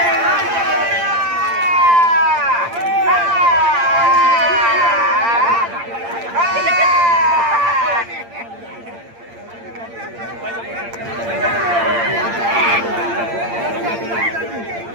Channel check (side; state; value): left; late; 8.7 ms